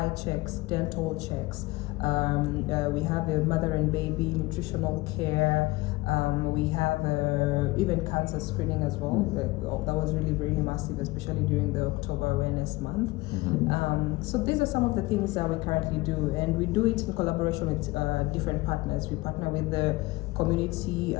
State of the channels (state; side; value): quieter; right; 21.7 dB